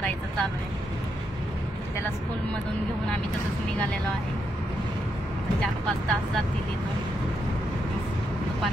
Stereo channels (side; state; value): both; normal; correlation 0.81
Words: चालू आहे. त्याला स्कूलमधून घेऊन आम्ही तसंच निघालेलो आहे. 4-5 तास जातील इथून,